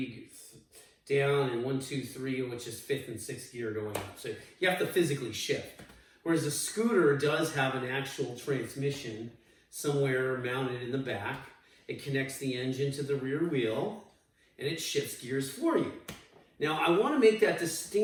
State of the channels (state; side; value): identical; both; correlation 1.00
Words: down and 1, 2, 3, which is 5th and 6th gear going up. So you have to physically shift. Whereas a scooter does have an actual transmission somewhere mounted in the back. It connects the engine to the rear wheel and it shifts gears for you. Now, I want to make that